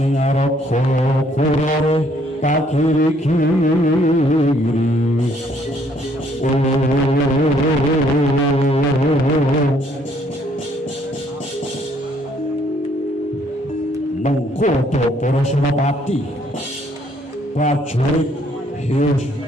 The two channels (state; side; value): normal; both; correlation 0.66